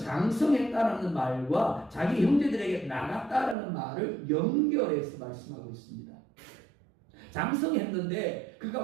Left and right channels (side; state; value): left; drops out; at 3.6 s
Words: 말과 자기 형제들에게 나갔다라는 말을 연결해서 말씀하고 있습니다. 장성했는데 그가